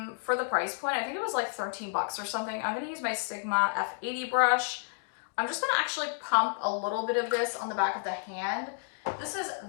for the price point. I think it was like 13 bucks or something. I'm gonna use my Sigma F80 brush. I'm just gonna actually pump a little bit of this on the back of the hand. This is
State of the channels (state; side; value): silent; right; digital silence